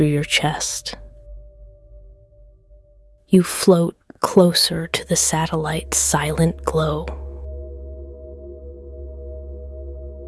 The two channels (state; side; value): identical; both; correlation 1.00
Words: your chest. You float closer to the satellite's silent glow.